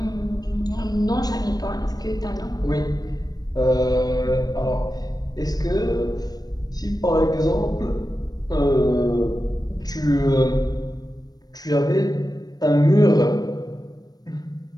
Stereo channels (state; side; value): late; right; 0.19 ms